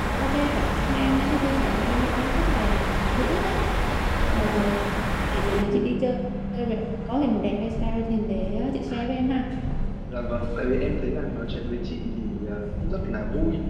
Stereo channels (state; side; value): identical; both; correlation 1.00